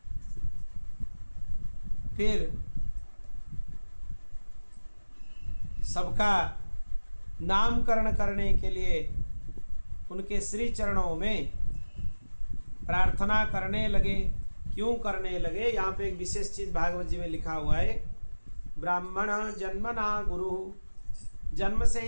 फिर सबका नामकरण करने के लिए उनके श्री चरणों में प्रार्थना करने लगे। क्यों करने लगे? यहाँ पे एक विशेष चीज भागवत जी में लिखा हुआ है, ब्राह्मण जन्मना गुरु, जन्म से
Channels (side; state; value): both; inverted; correlation -1.00